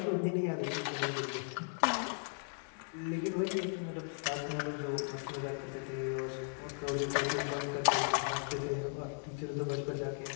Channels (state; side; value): silent; right; 53 dB below the other